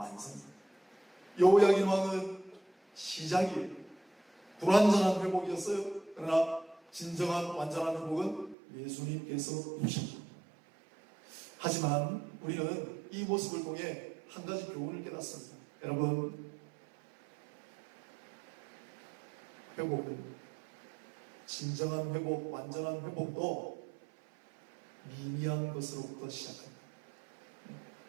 여호야긴 왕은 시작이에요. 불완전한 회복이었어요. 그러나 진정한 완전한 회복은 예수님께서 주십니다. 하지만 우리는 이 모습을 통해 한 가지 교훈을 깨닫습니다. 여러분, 회복은, 진정한 회복, 완전한 회복도 미미한 것으로부터 시작합니다.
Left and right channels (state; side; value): drops out; left; at 8.6 s